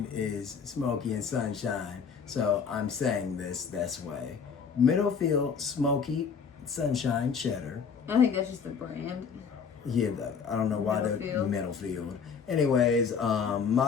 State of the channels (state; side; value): quieter; right; 6.2 dB